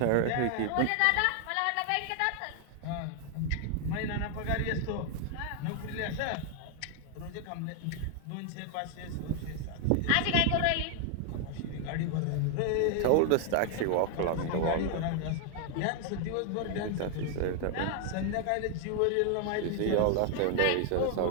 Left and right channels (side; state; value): both; different; correlation 0.00